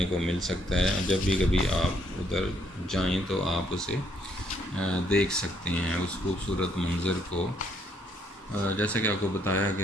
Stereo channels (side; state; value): both; normal; correlation 0.70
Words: کو مل سکتا ہے۔ جب بھی کبھی آپ ادھر جائیں تو آپ اسے دیکھ سکتے ہیں، اس خوبصورت منظر کو۔ جیسا کہ آپ کو بتایا